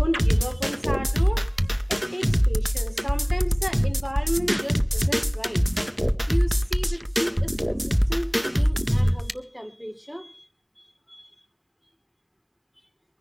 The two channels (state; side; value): identical; both; correlation 1.00